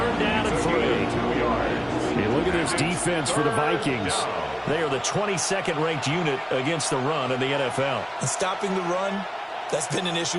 down and 3. Hey, look at this defense for the Vikings. They are the 22nd ranked unit against the run in the NFL. And stopping the run, that's been an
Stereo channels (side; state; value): both; identical; correlation 1.00